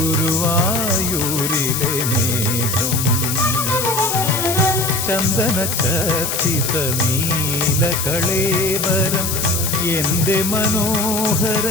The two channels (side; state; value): left; noise; hiss, 2 dB below the sound